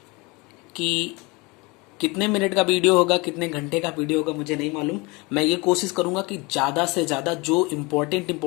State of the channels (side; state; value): right; quieter; 26.2 dB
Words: कि कितने मिनट का वीडियो होगा, कितने घंटे का वीडियो होगा मुझे नहीं मालूम। मैं ये कोशिश करूंगा कि ज़्यादा से ज़्यादा जो